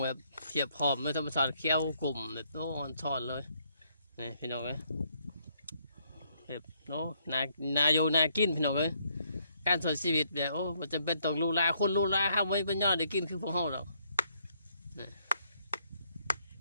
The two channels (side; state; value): both; inverted; correlation -0.71